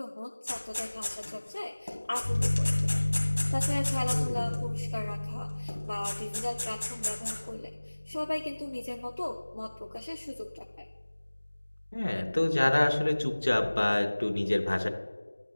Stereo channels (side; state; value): both; inverted; correlation -1.00